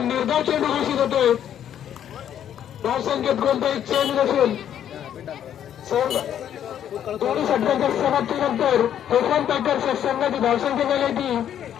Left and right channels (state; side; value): quieter; right; 10.0 dB